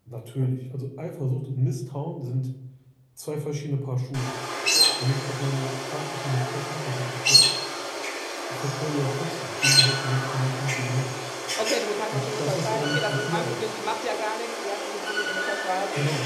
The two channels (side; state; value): both; identical; correlation 1.00